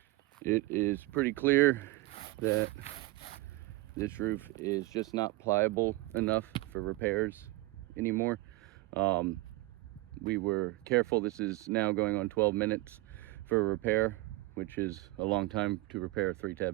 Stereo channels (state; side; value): quieter; left; 20.7 dB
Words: It is pretty clear that this roof is just not pliable enough for repairs anymore. We were careful. This is now going on 12 minutes for a repair, which is a long time to repair a